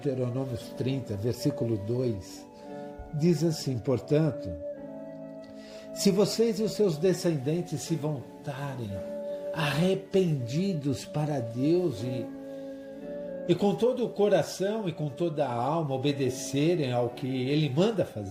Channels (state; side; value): identical; both; correlation 1.00